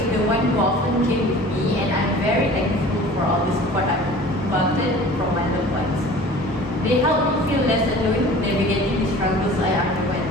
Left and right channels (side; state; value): both; normal; correlation 0.43